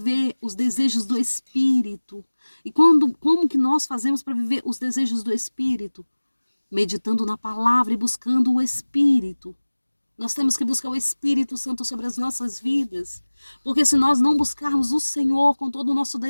os desejos do Espírito. E como que nós fazemos para viver os desejos do Espírito? Meditando na palavra e buscando o Espírito. Nós temos que buscar o Espírito Santo sobre as nossas vidas. Porque se nós não buscarmos o Senhor com todo o nosso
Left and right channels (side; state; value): both; inverted; correlation -1.00